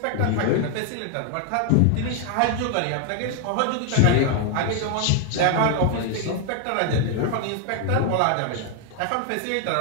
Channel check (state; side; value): different; both; correlation 0.00